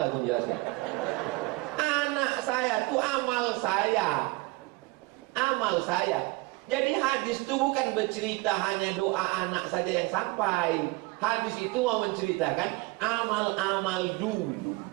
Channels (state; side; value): quieter; left; 23.3 dB